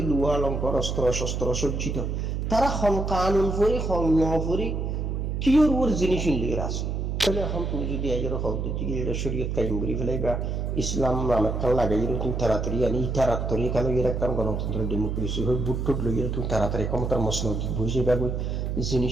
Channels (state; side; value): noise; right; hum, 2 dB below the sound